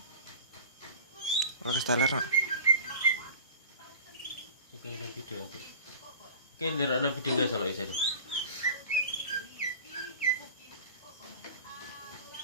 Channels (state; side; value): inverted; both; correlation -0.40